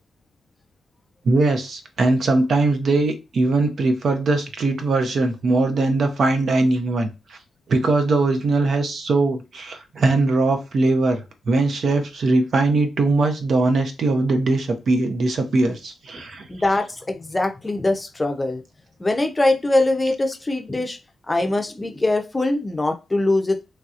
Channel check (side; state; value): both; normal; correlation 0.87